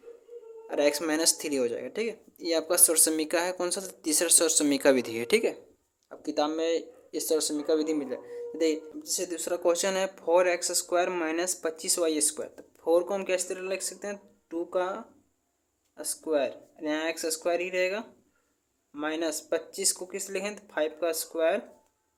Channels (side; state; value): both; identical; correlation 1.00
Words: और एक्स माइनस 3 हो जाएगा, ठीक है। ये आपका सौर समीका है। कौन सा? तीसरा सौर समीका विधि है, ठीक है। अब किताब में इस सौर समीका विधि मिल जाए। देखिए जैसे दूसरा क्वेश्चन है 4x square minus 25y square. तो 4 को हम किस तरह लिख सकते हैं? 2 का स्क्वायर, यहाँ एक्स स्क्वायर ही रहेगा, माइनस 25 को किस लिखें? तो 5 का स्क्वायर,